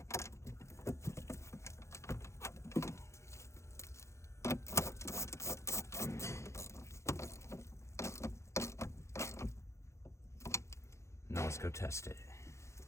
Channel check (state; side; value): late; right; 0.14 ms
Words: Now let's go test it.